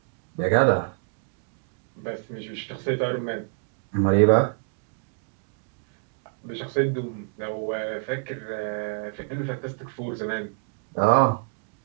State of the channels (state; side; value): quieter; left; 39.4 dB